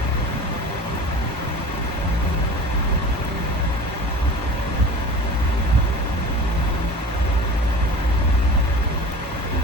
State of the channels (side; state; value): both; normal; correlation 0.38